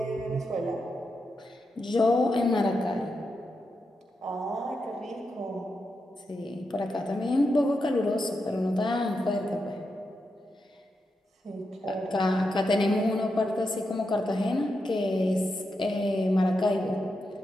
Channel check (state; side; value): normal; both; correlation 0.86